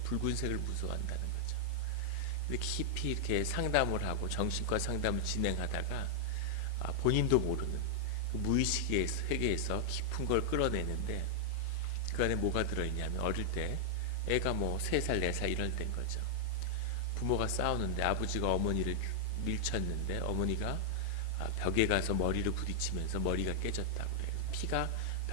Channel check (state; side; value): late; left; 5.4 ms